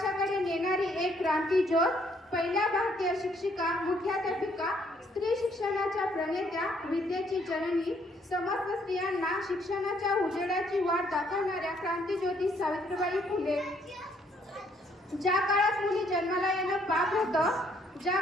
नेणारी एक क्रांती ज्योत, पहिल्या भारतीय शिक्षिका, मुख्याध्यापिका, स्त्री शिक्षणाच्या प्रणेत्या, विद्येची जननी, समस्त स्त्रियांना शिक्षणाच्या उजेडाची वाट दाखवणाऱ्या क्रांतीज्योती सावित्रीबाई फुले. ज्या काळात मुली जन्माला येणं पाप होतं, ज्या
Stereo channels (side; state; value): both; normal; correlation 0.67